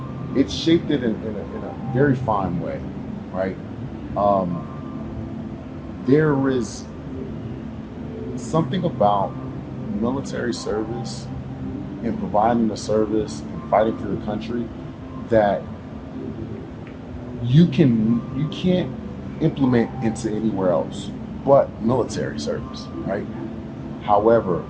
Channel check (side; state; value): both; identical; correlation 1.00